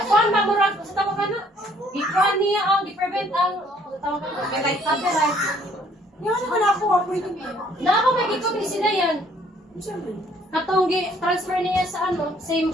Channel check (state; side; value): normal; both; correlation 0.62